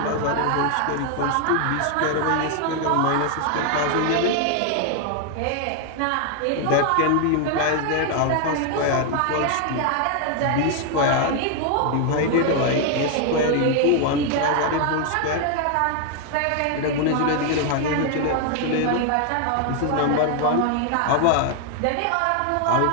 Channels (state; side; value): different; both; correlation 0.00